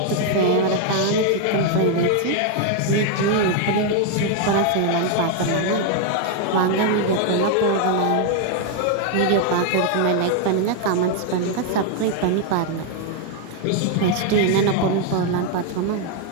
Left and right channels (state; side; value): different; both; correlation 0.00